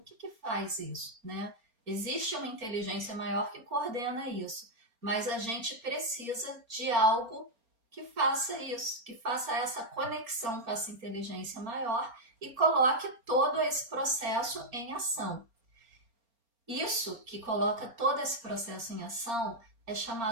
faz isso, né? Existe uma inteligência maior que coordena isso, mas a gente precisa de algo que faça isso, que faça essa conexão com essa inteligência maior e coloque todo esse processo em ação. Isso que coloca todo esse processo em ação é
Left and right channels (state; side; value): late; left; 4.3 ms